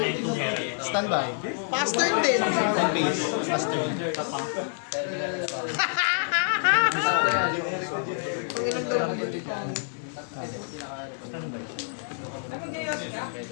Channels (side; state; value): right; silent; 60 dB below the other